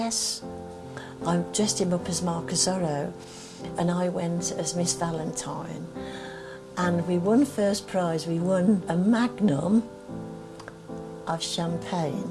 I dressed him up as Marcus Zorro, and I went as Miss Valentine, and we won first prize. We won a magnum of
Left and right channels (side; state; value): both; identical; correlation 1.00